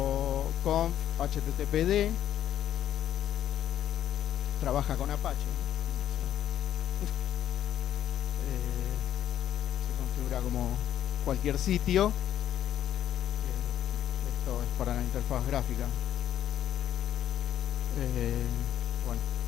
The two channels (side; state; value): right; quieter; 11.1 dB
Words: conf httpd. Trabaja con Apache, ¿no? Se configura como cualquier sitio. Esto es para la interfaz gráfica. Bueno,